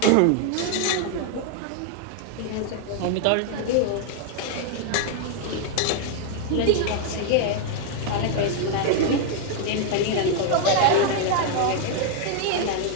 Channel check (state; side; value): different; both; correlation 0.00